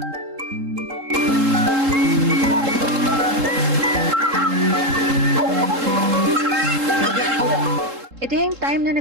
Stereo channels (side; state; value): left; late; 3.7 ms